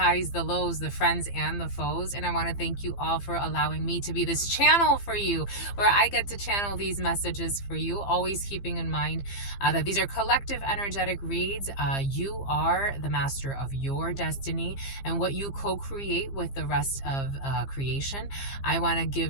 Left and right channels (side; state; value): right; late; 15 ms